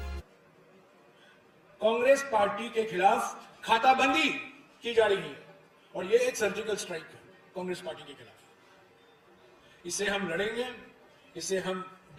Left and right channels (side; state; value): both; identical; correlation 1.00